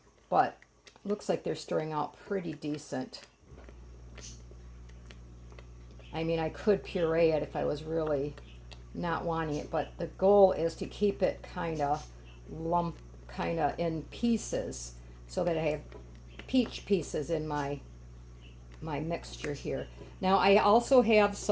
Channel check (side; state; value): both; identical; correlation 1.00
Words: But looks like they're stirring out pretty decent. I mean, I could puree it if I was really not wanting it, but the goal is to keep it kind of in pieces, so that I have peach pieces in my mixture here. Now I also have